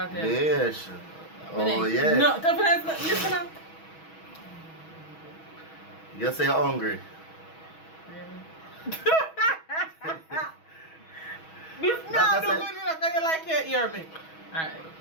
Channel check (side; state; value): right; late; 6.2 ms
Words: Yes. Oh, yeah. No, listen now. You say you're hungry. Really? This not do good enough because you like your ear me. Alright.